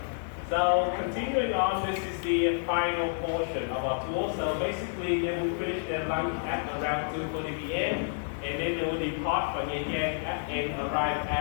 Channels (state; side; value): silent; right; digital silence